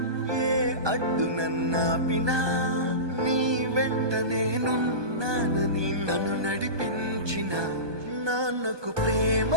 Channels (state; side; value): late; left; 1.2 ms